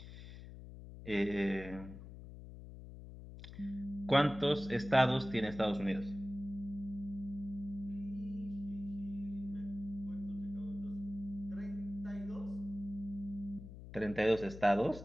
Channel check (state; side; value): noise; left; hum, 13 dB below the sound